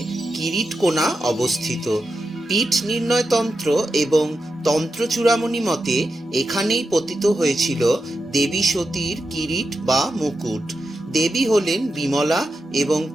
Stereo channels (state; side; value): normal; both; correlation 0.89